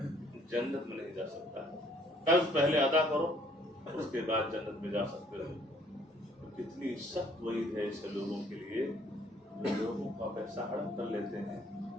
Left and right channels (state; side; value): normal; both; correlation 0.62